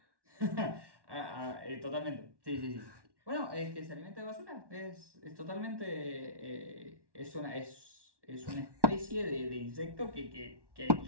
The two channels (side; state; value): left; late; 1.1 ms